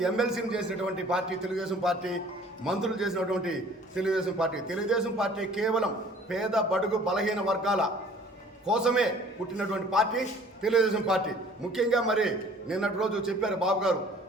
ఎమ్మెల్సీని చేసినటువంటి పార్టీ తెలుగుదేశం పార్టీ, మంత్రులు చేసినటువంటి తెలుగుదేశం పార్టీ. తెలుగుదేశం పార్టీ కేవలం పేద బడుగు బలహీన వర్గాల కోసమే పుట్టినటువంటి పార్టీ తెలుగుదేశం పార్టీ. ముఖ్యంగా మరి నిన్నటి రోజు చెప్పారు బాబు గారు,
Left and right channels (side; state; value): both; normal; correlation 0.52